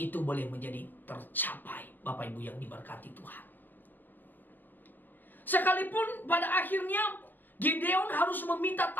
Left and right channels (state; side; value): late; right; 0.089 ms